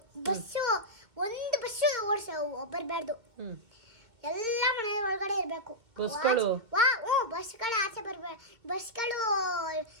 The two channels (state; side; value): late; left; 2.3 ms